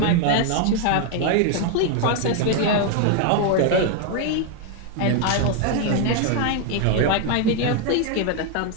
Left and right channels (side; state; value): both; different; correlation 0.00